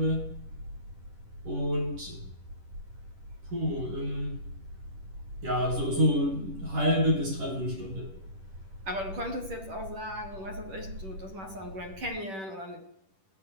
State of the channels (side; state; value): left; late; 10 ms